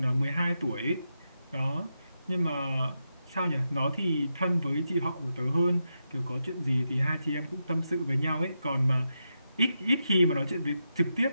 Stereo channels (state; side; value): inverted; both; correlation -0.87